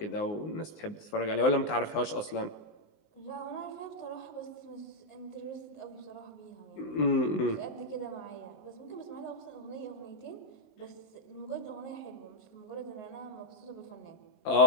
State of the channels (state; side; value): late; right; 19 ms